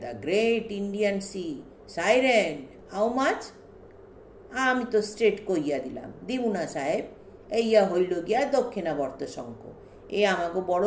the great Indian sea, siren, how much? আমি তো স্ট্রেট কইয়া দিলাম, দিবু না সাহেব, এইয়া হইল গিয়া দক্ষিণাবর্ত শঙ্খ, এ আমাকে বড়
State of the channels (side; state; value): both; identical; correlation 1.00